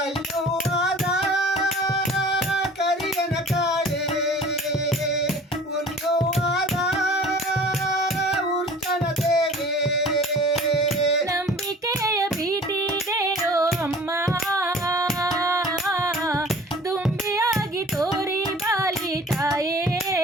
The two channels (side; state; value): both; normal; correlation 0.46